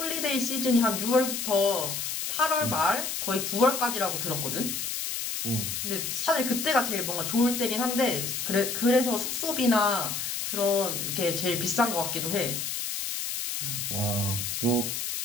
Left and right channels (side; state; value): left; noise; hiss, 3 dB below the sound